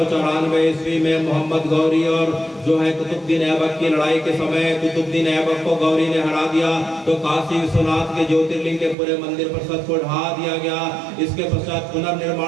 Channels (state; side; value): drops out; left; at 9.0 s